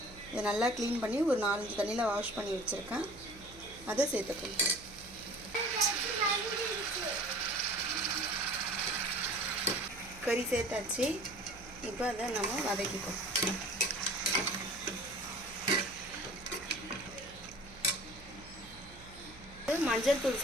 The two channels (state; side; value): noise; right; hum, 19 dB below the sound